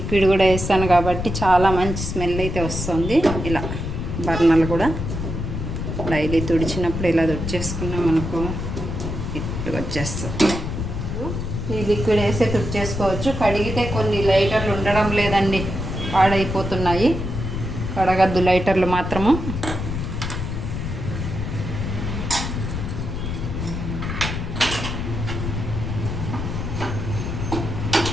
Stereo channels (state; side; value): noise; left; rumble, 4 dB below the sound